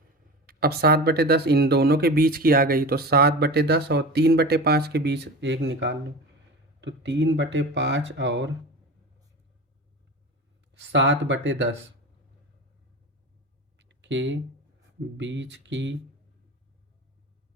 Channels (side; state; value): both; normal; correlation 0.30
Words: अब 7/10 इन दोनों के बीच की आ गई, तो 7/10 और 3/5 के बीच एक निकाल लो। तो 3/5 और 7/10 के बीच की